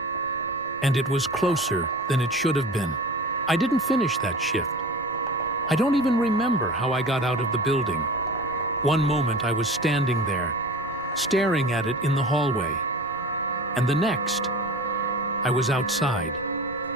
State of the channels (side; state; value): right; noise; rumble, 25 dB below the sound